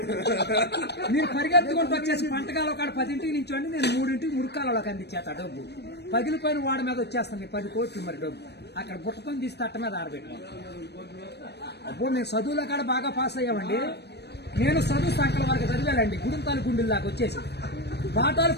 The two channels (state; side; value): late; right; 0.49 ms